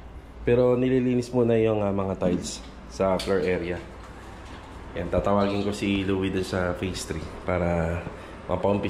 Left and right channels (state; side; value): identical; both; correlation 1.00